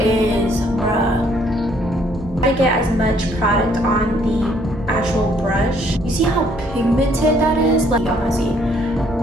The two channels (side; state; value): both; normal; correlation 0.65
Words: bruh. I get as much product on the actual brush. You see how pigmented that is? Like, y'all wanna see?